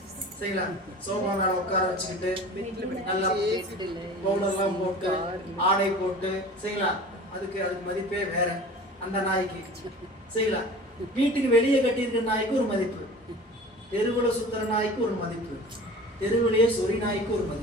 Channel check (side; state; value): both; normal; correlation 0.40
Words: சரிங்களா சோபா மேல உட்கார வச்சுக்கிட்டு நல்லா பவுடர்லாம் போட்டு ஆடை போட்டு சரிங்களா, அதுக்கு மதிப்பே வேற அந்த நாய்க்கு சரிங்களா. வீட்டுக்கு வெளியே கட்டியிருக்கிற நாய்க்கு ஒரு மதிப்பு, தெருவுல சுத்துற நாய்க்கு ஒரு மதிப்பு, தெருவிலேயே சொறி நாய்க்கு ஒரு